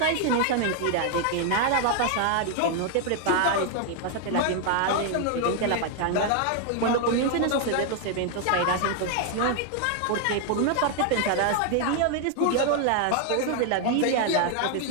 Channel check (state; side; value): different; both; correlation 0.00